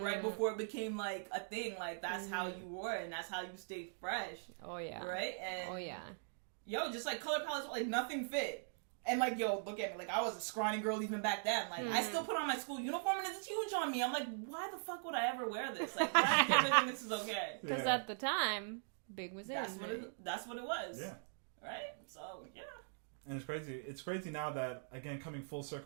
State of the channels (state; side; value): silent; left; digital silence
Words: before it became like a thing. Like that's how you wore it, and that's how you stayed fresh. Oh yeah. Right. And yo, just like color palettes, like nothing fit. And like, yo, look at me. Like, I was a scrawny girl even back then. Like, I still put on my school uniform and it's huge on me. I'm like, why the fuck would I ever wear this? Like, why do I think this is okay? Because at the time, big was in. That's what it was. Yeah. Right? So, yeah. And it's crazy. It's crazy now that, again, coming full